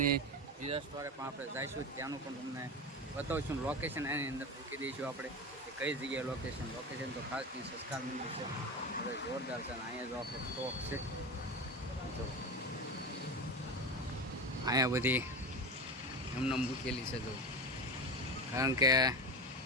બીજા સ્ટોરે પણ આપણે જઈશું, ત્યાંનું પણ તમને બતાવીશું. લોકેશન એની અંદર મૂકી દઈશું આપણે કે કઈ જગ્યાએ લોકેશન તો ખાસ ત્યાં સંસ્કાર મંડળ છે, હવે જોરદાર છે. અને અહીંયા જો આપણો સ્ટોક છે, જો અહીંયા બધી એમને મૂકેલી છે જો, કારણ કે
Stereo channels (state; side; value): normal; both; correlation 0.23